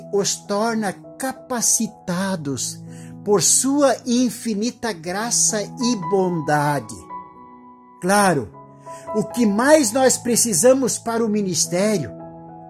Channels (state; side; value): identical; both; correlation 1.00